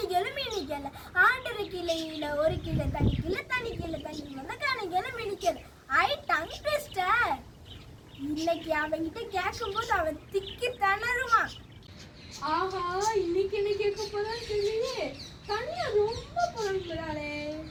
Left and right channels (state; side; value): identical; both; correlation 1.00